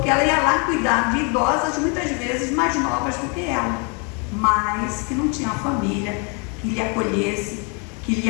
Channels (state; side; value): quieter; right; 35.2 dB